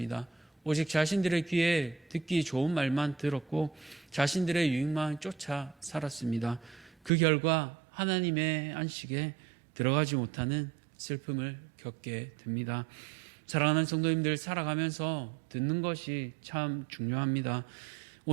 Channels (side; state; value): left; drops out; at 7.1 s